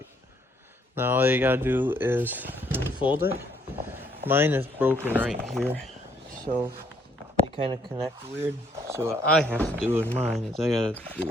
Now all you gotta do is unfold it. Mine is broken right here, so they kind of connect weird. So what I have to do in mine is I gotta do a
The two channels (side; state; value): both; normal; correlation 0.68